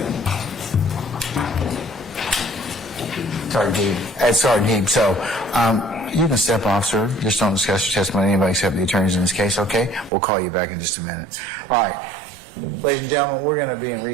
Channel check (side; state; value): left; drops out; at 10.1 s